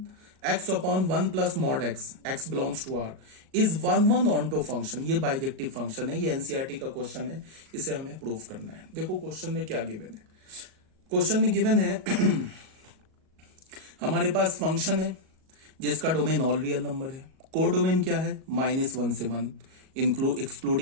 x upon 1 plus mod x, x belongs to R, is 1 onto function. ये bijective function है, ये NCERT का question है, इसे हमें prove करना है। देखो क्वेश्चन में क्या गिवन है, क्वेश्चन में गिवन है हमारे पास फंक्शन है जिसका डोमेन ऑल रियल नंबर है, को डोमेन क्या है -1 से 1,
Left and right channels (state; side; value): late; left; 38 ms